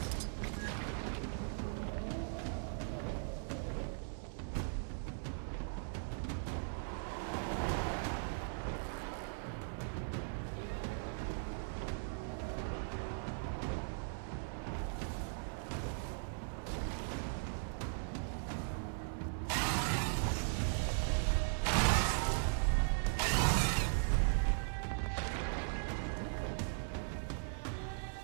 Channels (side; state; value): left; silent; 52 dB below the other